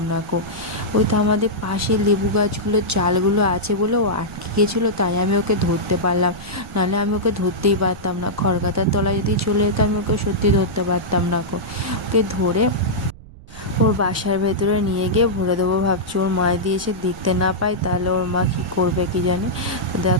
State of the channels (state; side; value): noise; right; rumble, 19 dB below the sound